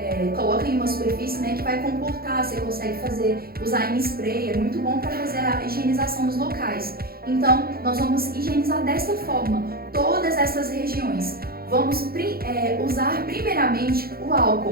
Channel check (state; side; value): late; left; 0.44 ms